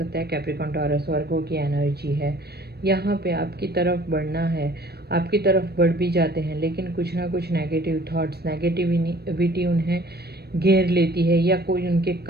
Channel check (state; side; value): late; left; 0.47 ms